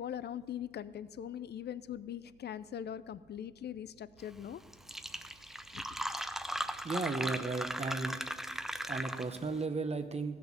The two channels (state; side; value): noise; right; hum, 26 dB below the sound